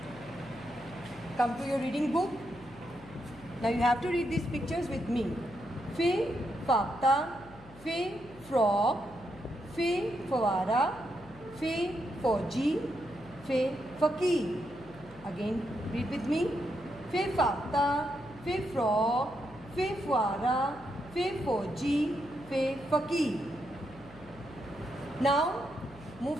come to your reading book. Now you have to read these pictures with me. Fe fakta, fe frog, fe fawara, fe fauji, fe fakir. Again read with me. Fe fakta, fe frog, fe fawara, fe fauji, fe fakir. Now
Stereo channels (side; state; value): left; noise; hum, 20 dB below the sound